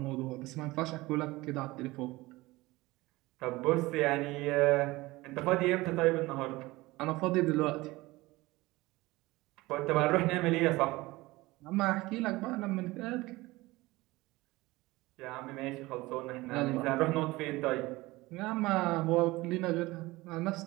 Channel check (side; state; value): left; quieter; 20.3 dB